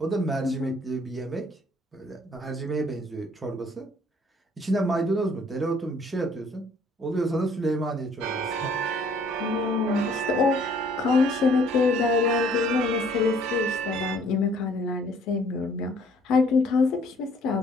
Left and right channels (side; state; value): both; normal; correlation 0.60